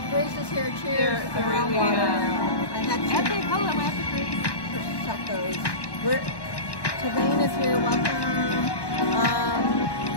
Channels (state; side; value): late; right; 1.1 ms